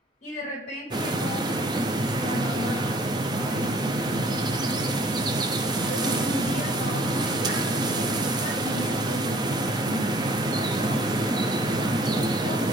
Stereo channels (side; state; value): both; normal; correlation 0.56